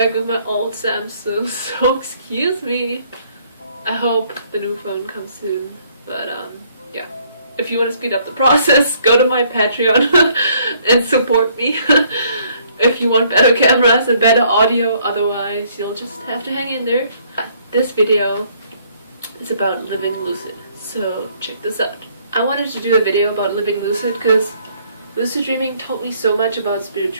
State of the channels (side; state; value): both; inverted; correlation -0.65